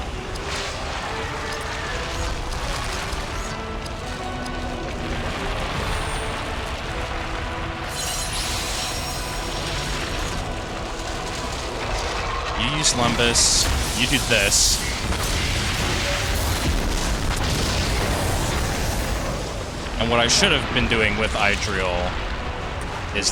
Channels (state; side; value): identical; both; correlation 1.00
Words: Lumbus, you do this. And what I should have been doing with Idriel is